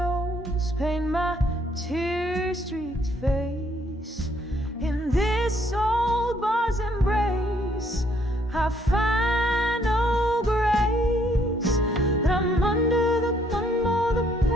paint my tear-streaked face. In this old bar's embrace, I find no grace. But I'm under the thumb of the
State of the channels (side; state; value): both; normal; correlation 0.68